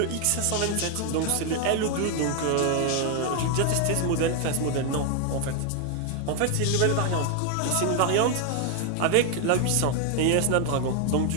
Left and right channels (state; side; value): different; both; correlation 0.01